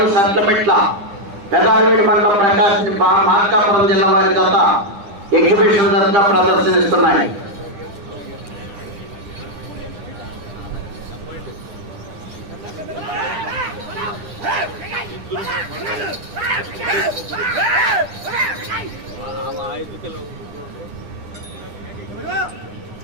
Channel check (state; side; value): late; left; 9.9 ms